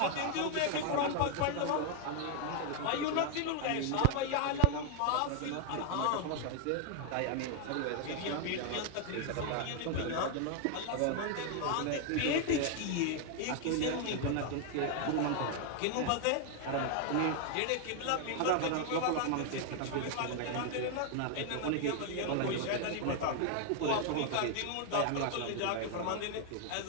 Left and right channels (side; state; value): both; different; correlation 0.00